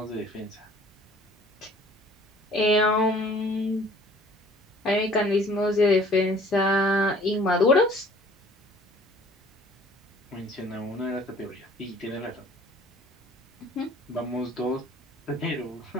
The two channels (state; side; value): normal; both; correlation 0.53